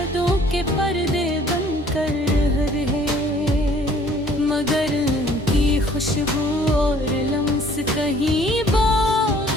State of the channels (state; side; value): normal; both; correlation 0.56